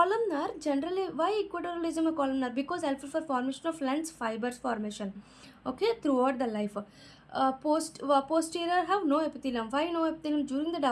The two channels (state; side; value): identical; both; correlation 1.00